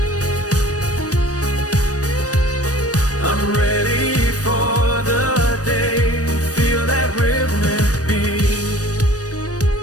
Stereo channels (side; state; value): right; late; 0.67 ms